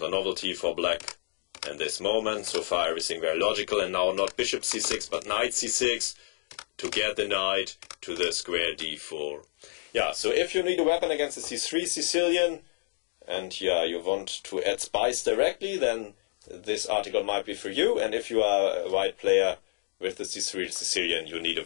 a novelty for black in this moment. So far everything very logical, and now not bishop c6 but knight c6 to get the knight to the square d4. Yeah, so if you need a weapon against the c3 Sicilian, and yeah, you want to add spice directly, then this article might be for you. And if you are a white player with the c3 Sicilian, you need a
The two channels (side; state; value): right; silent; digital silence